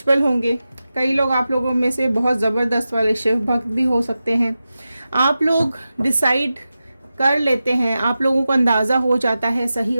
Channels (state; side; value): inverted; both; correlation -0.93